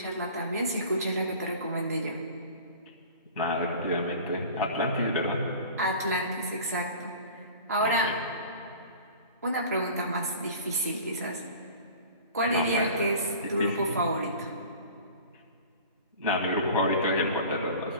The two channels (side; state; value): both; inverted; correlation -0.41